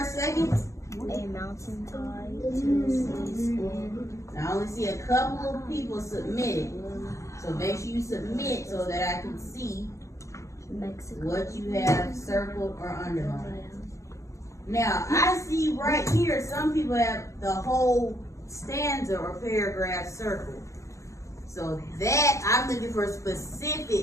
seconds. A mountain tide to the spin. I only see a couple of people submitted. So make sure you submit so that I can see Mexico. what you have circled or underlined. Now, I see right here, some people have the whole stanza or paragraph circled. So that, I'm looking for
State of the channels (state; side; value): late; right; 0.15 ms